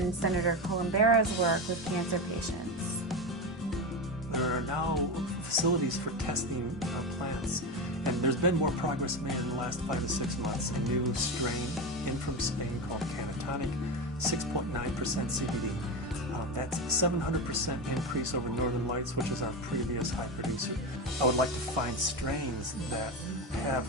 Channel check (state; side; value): normal; both; correlation 0.18